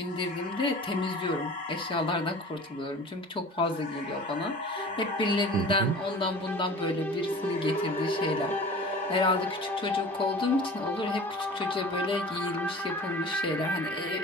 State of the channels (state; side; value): normal; both; correlation 0.40